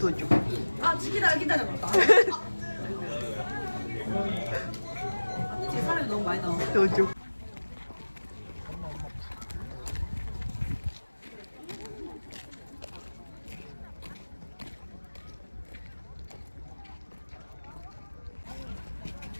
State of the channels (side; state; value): both; inverted; correlation -1.00